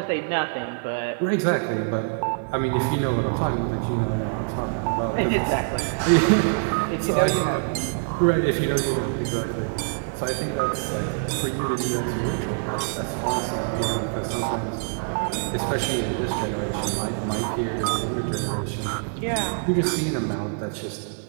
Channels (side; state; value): left; silent; digital silence